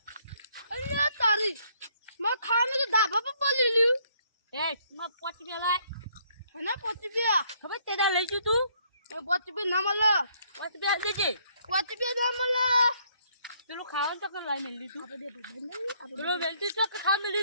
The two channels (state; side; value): inverted; both; correlation -0.67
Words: અલ્યા તારી માં ખાને તો ધાબા પર પડી લ્યું. એ માં પોચી બેલાય અને પોચી બે ખબર તેડા લઈ જુ તું પોચી બે ના મળે. પોચી બે દેજે પોચી બે ના મળે. પેલું ખાવાનું તો કર લાઈ મેલી તું આપણે બે બંધ પેલું વેલતી તો ખા